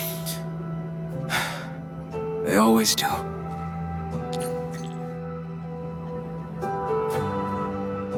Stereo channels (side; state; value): both; identical; correlation 1.00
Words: They always do.